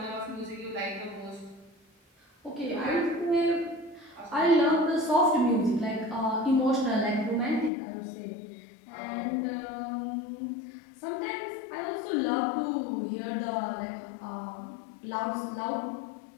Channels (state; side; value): drops out; right; at 7.7 s